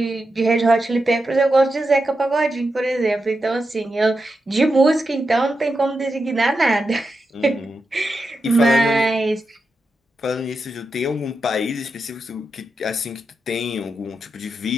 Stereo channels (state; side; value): normal; both; correlation 0.88